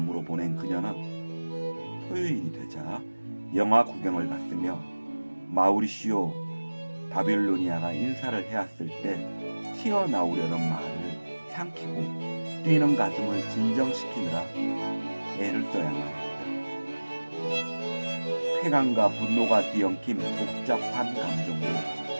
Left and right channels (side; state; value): both; inverted; correlation -1.00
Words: 보낸 그녀는 토요일이 되자 영화 구경을 갔으며 마우리시오 바빌로니아가 인사를 해왔을 때 튀어나오려는 말을 삼키고 뛰는 가슴을 진정시키느라 애를 써야만 했다. 쾌감과 분노가 뒤엉킨 복잡한 감정으로